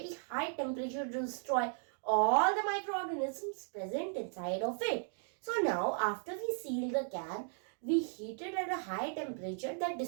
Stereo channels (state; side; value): silent; left; 54 dB below the other